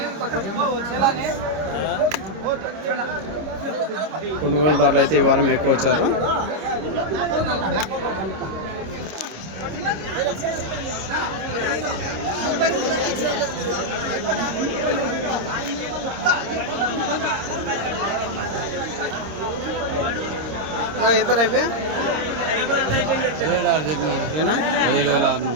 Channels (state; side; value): late; left; 26 ms